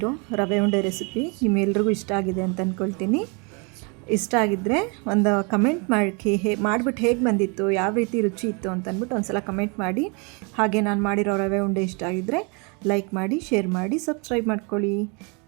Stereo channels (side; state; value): left; quieter; 32.6 dB